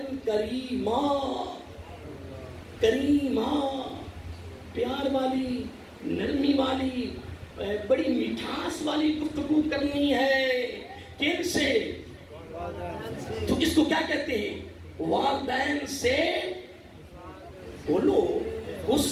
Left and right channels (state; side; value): identical; both; correlation 1.00